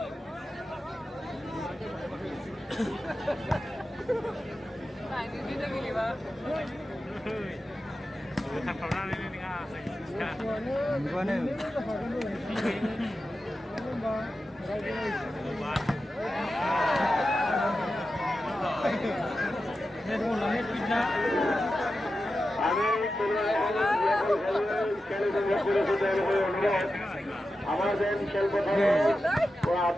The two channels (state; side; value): normal; both; correlation 0.92